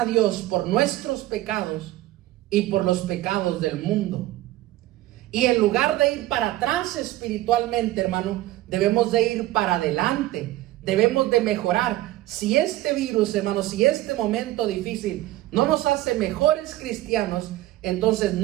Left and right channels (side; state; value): left; quieter; 16.2 dB